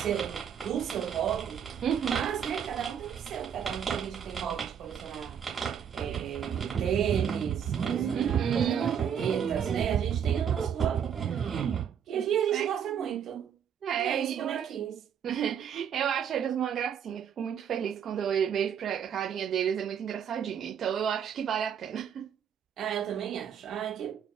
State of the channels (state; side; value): quieter; left; 8.3 dB